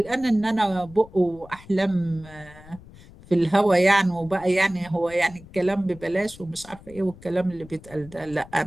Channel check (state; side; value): noise; left; rumble, 20 dB below the sound